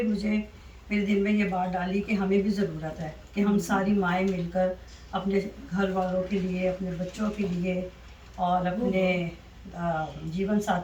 मुझे मेरे दिल में ये बात डाली कि हमें भी ज़रूरत है कि हम सारी माएँ मिलकर अपने घर वालों के लिए, अपने बच्चों के लिए और अपने जीवन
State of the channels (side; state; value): both; identical; correlation 1.00